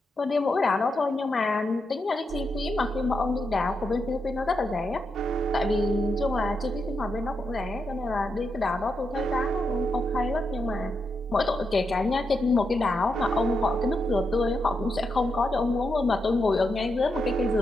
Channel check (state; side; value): normal; both; correlation 0.84